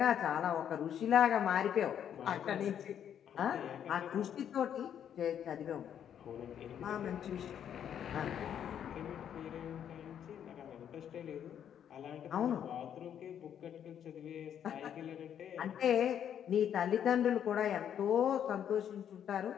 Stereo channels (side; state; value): right; quieter; 9.3 dB